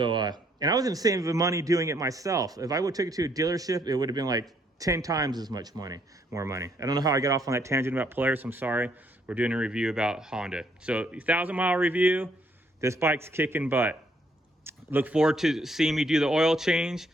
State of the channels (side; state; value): both; normal; correlation 0.69